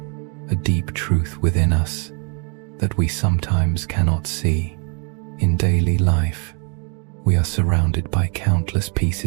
a deep truth within us that we sometimes cannot see. In daily life, we are surrounded by countless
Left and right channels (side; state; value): left; quieter; 37.9 dB